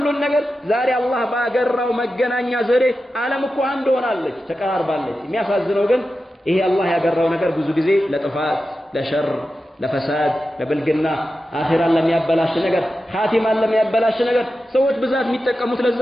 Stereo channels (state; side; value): normal; both; correlation 0.92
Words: ነገር ዛሬ አላህ ባገራው መገናኛ ዘዴ ዓለም እኮ አንድ ሆናለች፣ ተቀራርባለች። የሚያሳዝነው ግን ይሄ አላህ ያገራው ነገር ብዙ ጊዜ ለጥፋት ለሸር ለፈሳድ ለብልግና አኺራን ለሚያበላሽ ነገር ኻቲማን ለሚያበላሽ ነገር ሰዎች ብዛት የሚጠቀሙት ለዛ